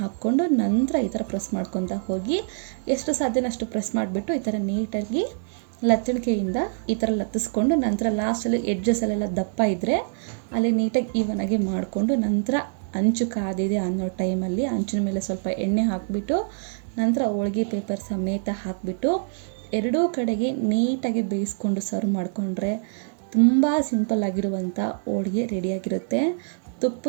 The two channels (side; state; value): left; silent; digital silence